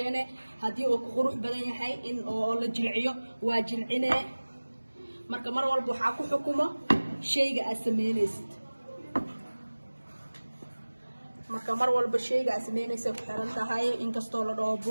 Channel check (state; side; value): inverted; both; correlation -1.00